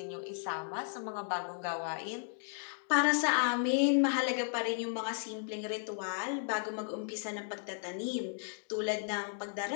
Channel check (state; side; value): silent; right; digital silence